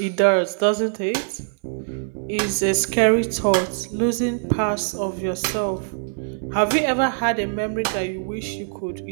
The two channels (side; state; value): left; silent; 64 dB below the other